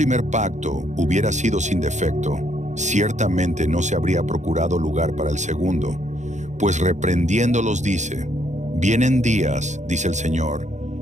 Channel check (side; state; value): left; late; 0.34 ms